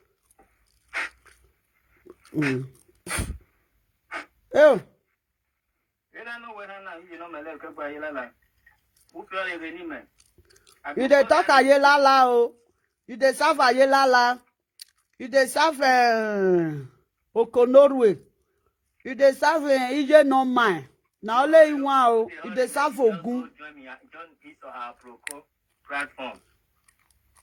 Oh. You don't know whether you know my leg by Yelala. Who feel any man? You dey talk ayelala o. You dey serve ayelala. You dey serve Okonorwe. You dey serve Ije no mine. Now only you want you dey serve Ogun. Join this or our platform.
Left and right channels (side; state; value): both; identical; correlation 1.00